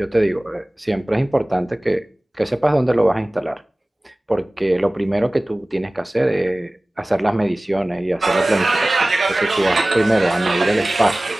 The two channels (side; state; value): both; normal; correlation 0.98